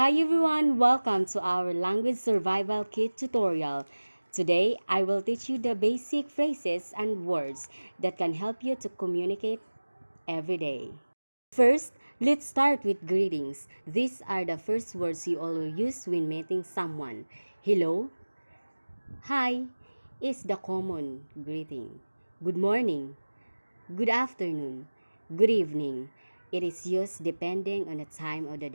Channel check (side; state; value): both; inverted; correlation -1.00